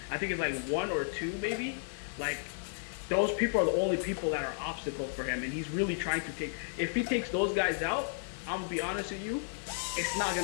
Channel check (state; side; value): silent; right; 56 dB below the other